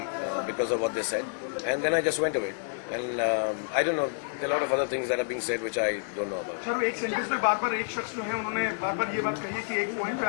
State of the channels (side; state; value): right; silent; 59 dB below the other